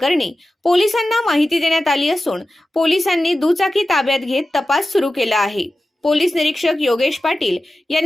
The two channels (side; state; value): both; normal; correlation 0.94